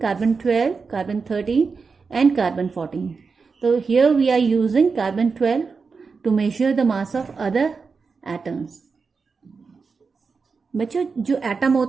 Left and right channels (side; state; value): left; quieter; 4.9 dB